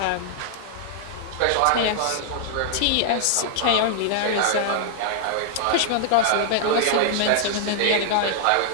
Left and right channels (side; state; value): both; different; correlation -0.01